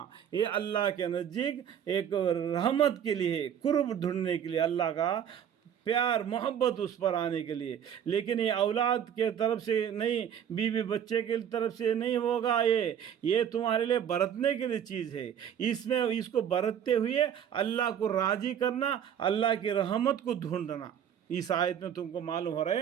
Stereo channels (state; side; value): quieter; left; 9.0 dB